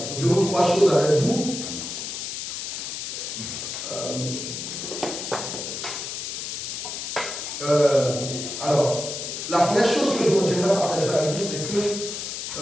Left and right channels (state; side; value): noise; left; hiss, 5 dB below the sound